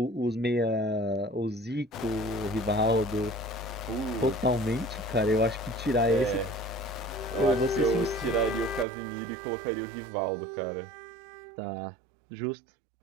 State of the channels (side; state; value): left; drops out; at 8.8 s